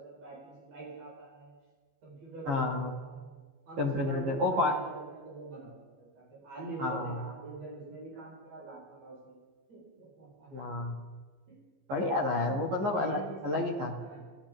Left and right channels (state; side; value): late; left; 15 ms